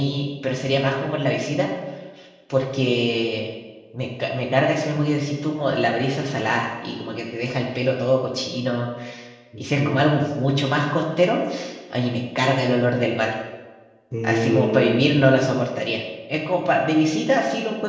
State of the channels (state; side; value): identical; both; correlation 1.00